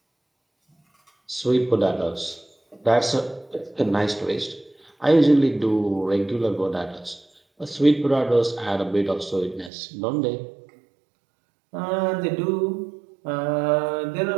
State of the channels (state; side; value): drops out; left; at 9.7 s